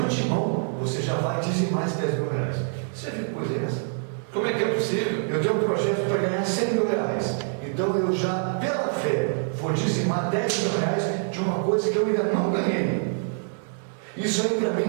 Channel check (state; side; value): silent; left; digital silence